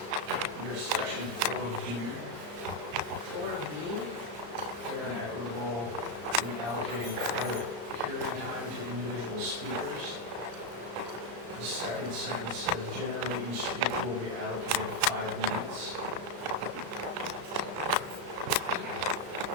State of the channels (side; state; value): left; late; 34 ms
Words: The second sentence says, generally each speaker will be allocated 5 minutes.